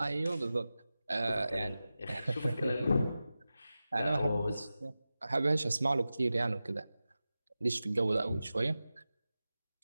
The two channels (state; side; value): inverted; both; correlation -0.94